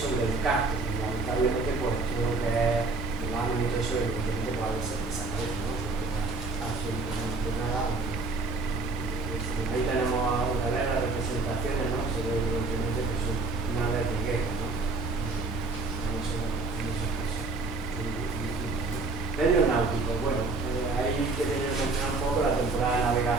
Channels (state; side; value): quieter; left; 3.8 dB